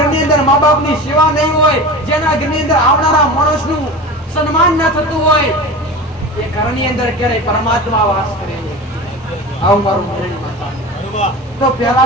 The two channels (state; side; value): normal; both; correlation 0.31